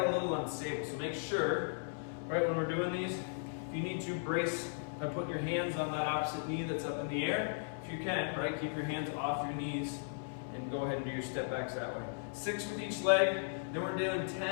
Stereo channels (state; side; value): silent; right; 53 dB below the other